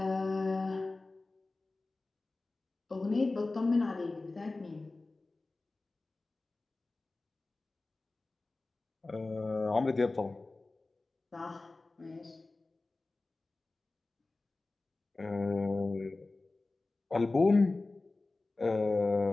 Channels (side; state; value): right; quieter; 3.3 dB